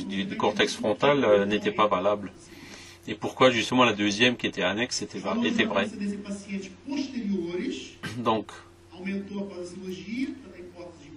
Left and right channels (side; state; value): both; identical; correlation 1.00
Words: cortex frontal n'était pas valable. Et pourquoi justement la deuxième qui était annexe était vraie. Donc,